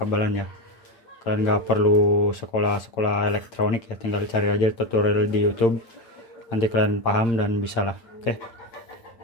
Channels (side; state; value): right; late; 8.9 ms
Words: ya. Kalian gak perlu sekolah elektronik ya, tinggal cari aja tutorial di YouTube, nanti kalian paham dan bisa lah. Oke,